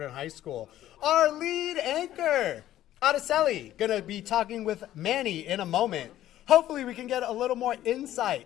High School. Our lead anchor out Araceli going to be talking with Manny in a moment. Hopefully we can get a little more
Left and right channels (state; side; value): quieter; right; 13.1 dB